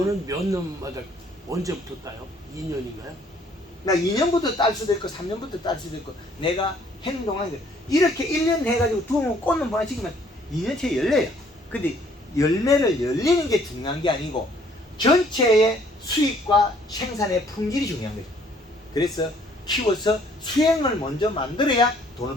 몇 년마다 언제부터 따요? 2년인가요? 나 2년부터 딸 수도 있고 3년부터 딸 수도 있고 내가 행동하는 거 이렇게 1년 해가지고 두면 꽃은 보내치기면 2년째 열려요. 근데 열매를 열리는 게 중요한 게 아니고 전체의 수익과 생산의 품질이 중요한 거죠. 그래서 키워서 수행을 먼저 만들어야 돈을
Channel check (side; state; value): both; normal; correlation 0.61